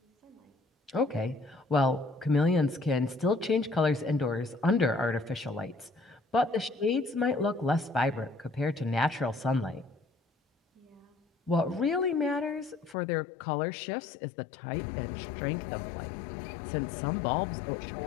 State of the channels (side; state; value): right; drops out; at 13.0 s